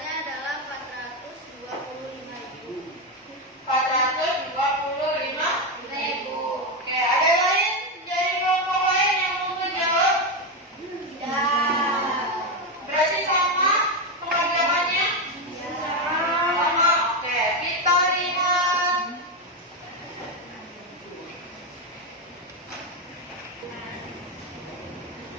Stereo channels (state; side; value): normal; both; correlation 0.09